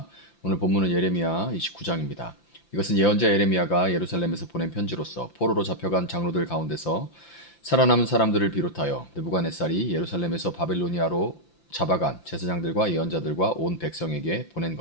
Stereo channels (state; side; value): late; right; 5.9 ms